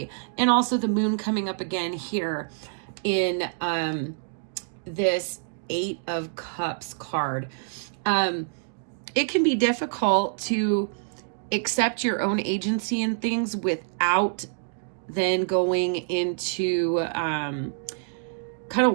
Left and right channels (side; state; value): left; silent; digital silence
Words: and also the moon coming up again here in this 8 of Cups card. It can be difficult to accept your own agency in things without then going into kind